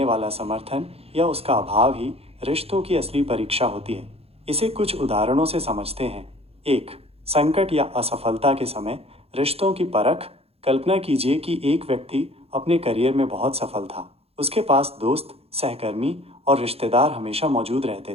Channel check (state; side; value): late; left; 0.29 ms